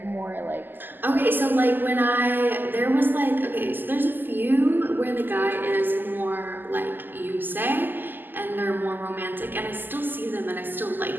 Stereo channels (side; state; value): left; late; 0.090 ms